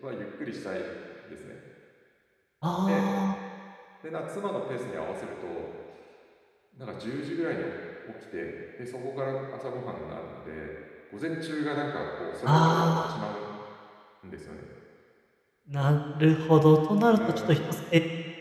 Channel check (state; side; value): identical; both; correlation 1.00